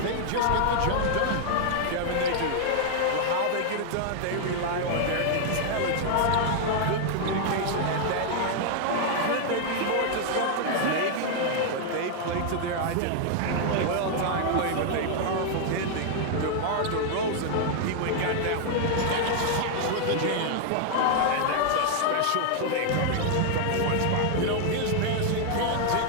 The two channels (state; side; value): different; both; correlation 0.00